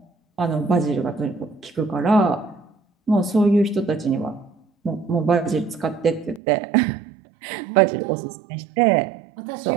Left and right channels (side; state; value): left; drops out; at 6.4 s